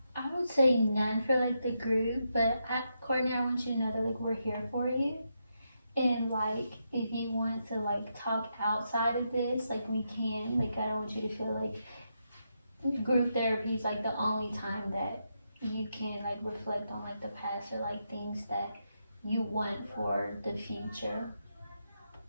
I would say none for like the group, but Courtney, I want you to know that like we're here for you. And like if you want to like talk outside of this, like we can. Like I don't want you to feel like group therapy is like the only time that you can like reflect on like the past or like things that you want for the future.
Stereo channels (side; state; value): both; inverted; correlation -0.83